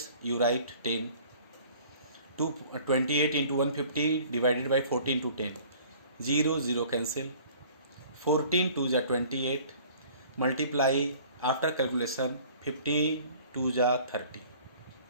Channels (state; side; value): inverted; both; correlation -0.51